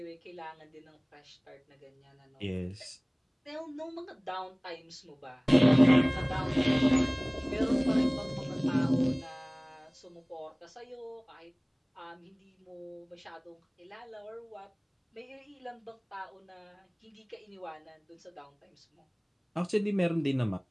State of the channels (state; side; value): identical; both; correlation 1.00